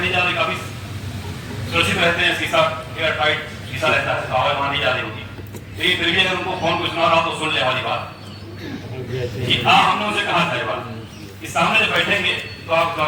जा रही, काफी सुरक्षित रहते हैं, शीशा एयर टाइट शीशा रहता है, तो आवाज वहां नहीं जा रही होगी। लेकिन फिर भी अगर उनको फोन कुछ सुना रहा तो सुन ले हमारी बात कि हाँ, हमने उनसे कहा था ये बात कि सामने जब बैठेंगे तो आप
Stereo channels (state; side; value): identical; both; correlation 1.00